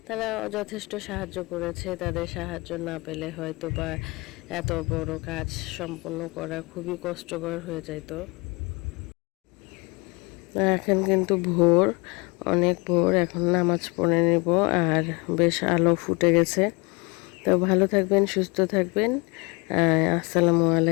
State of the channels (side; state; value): right; quieter; 27.1 dB